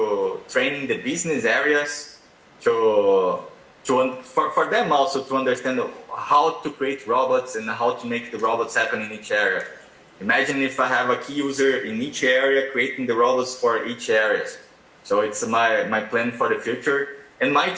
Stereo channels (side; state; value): both; identical; correlation 1.00